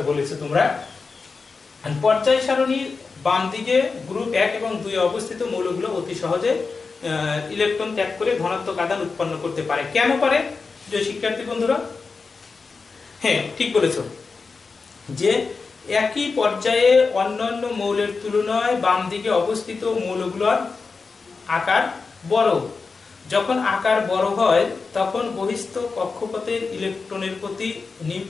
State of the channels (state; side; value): quieter; right; 4.5 dB